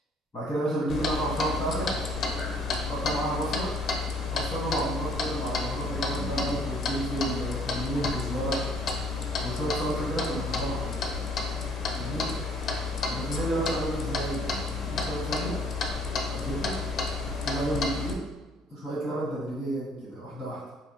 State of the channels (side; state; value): both; normal; correlation 0.59